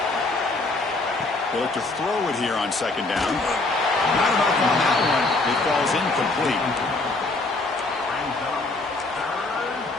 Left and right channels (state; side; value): quieter; right; 3.2 dB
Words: They look to throw it here on 2nd down. Not enough on that one. It falls incomplete.